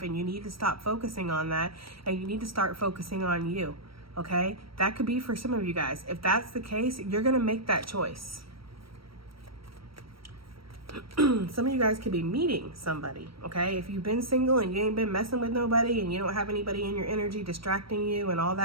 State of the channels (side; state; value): left; late; 0.75 ms